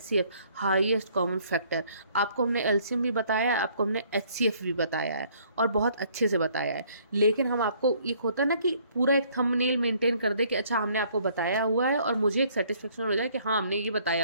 हाईएस्ट कॉमन फैक्टर। आपको हमने एलसीएम भी बताया है, आपको हमने एचसीएफ भी बताया है और बहुत अच्छे से बताया है। लेकिन हम आपको एक होता है ना कि पूरा एक थंबनेल मेंटेन कर दे कि अच्छा हमने आपको बताया हुआ है और मुझे एक सेटिस्फेक्शन हो जाए कि हाँ हमने ये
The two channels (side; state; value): both; inverted; correlation -0.61